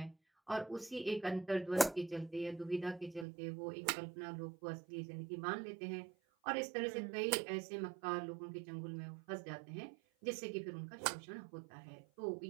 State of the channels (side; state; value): left; drops out; at 3.2 s